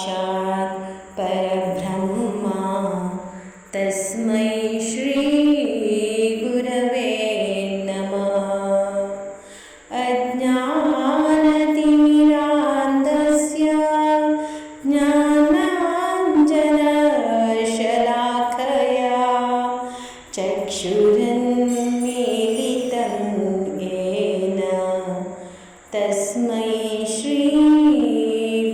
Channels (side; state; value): both; identical; correlation 1.00